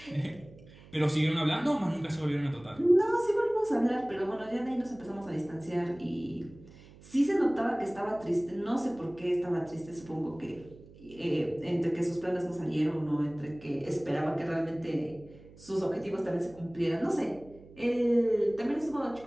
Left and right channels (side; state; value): right; noise; hum, 21 dB below the sound